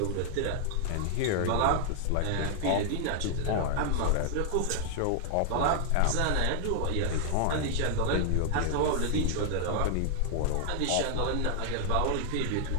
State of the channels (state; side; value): different; both; correlation -0.01